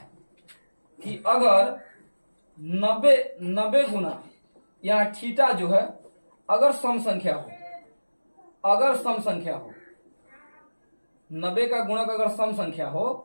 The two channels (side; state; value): both; inverted; correlation -1.00